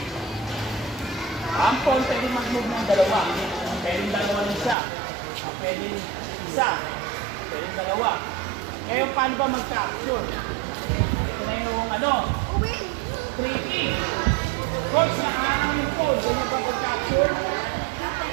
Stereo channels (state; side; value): drops out; left; at 4.8 s